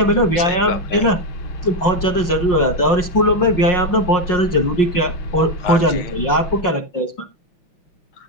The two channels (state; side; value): late; right; 5.6 ms